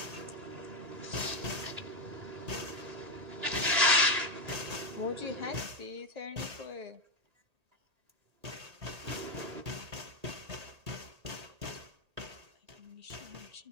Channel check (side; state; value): left; late; 1.8 ms